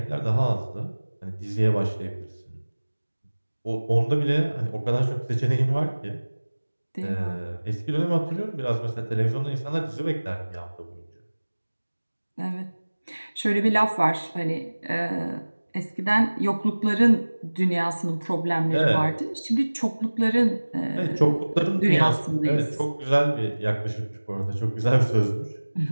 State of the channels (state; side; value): inverted; both; correlation -1.00